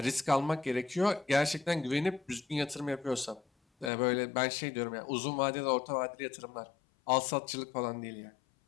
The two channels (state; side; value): drops out; right; at 3.9 s